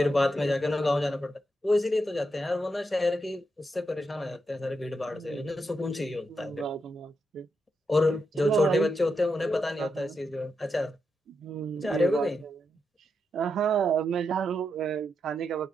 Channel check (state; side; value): normal; both; correlation 0.84